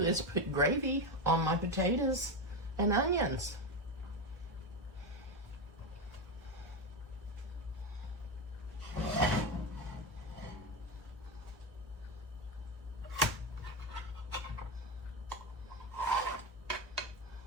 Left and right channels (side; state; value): both; normal; correlation 0.13